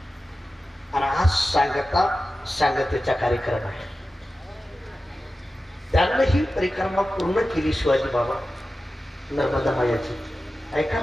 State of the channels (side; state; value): both; normal; correlation 0.94